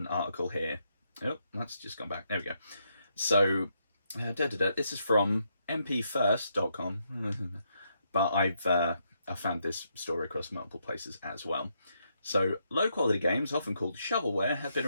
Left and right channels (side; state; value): both; inverted; correlation -0.78